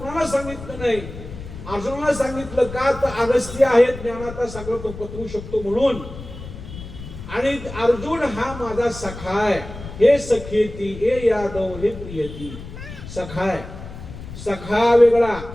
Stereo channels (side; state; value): left; noise; rumble, 12 dB below the sound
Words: सांगितलं नाही. अर्जुनाला सांगितलं का? तर अगस्त्य आहे ज्ञानाचा सागर, तो पत्रू शकतो म्हणून. आणि अर्जुन हा माझा सखा आहे. हे सखेती, हे यादव, हे प्रियती. सखा आहे. सखा वेगळा,